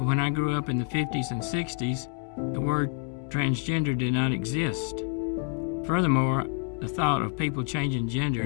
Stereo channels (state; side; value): quieter; right; 39.1 dB